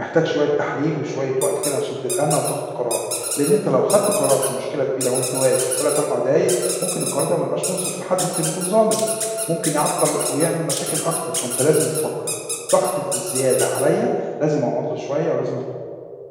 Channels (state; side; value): identical; both; correlation 1.00